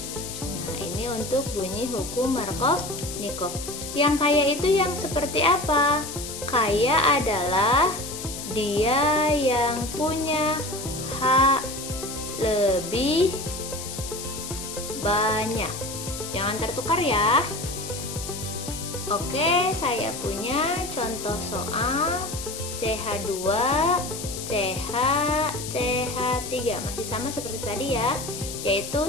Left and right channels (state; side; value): noise; left; hiss, 9 dB below the sound